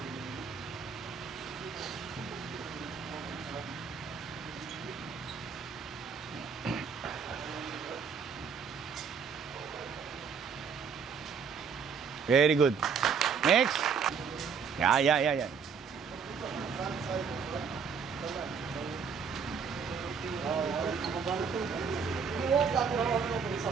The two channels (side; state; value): left; quieter; 6.2 dB